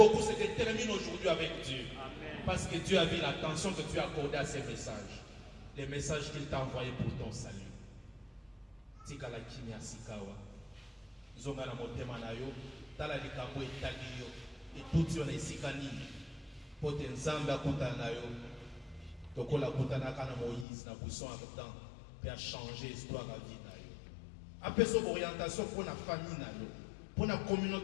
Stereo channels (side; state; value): right; drops out; at 20.7 s